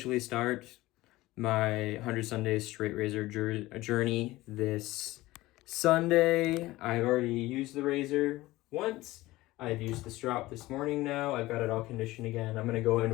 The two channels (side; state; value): right; quieter; 18.3 dB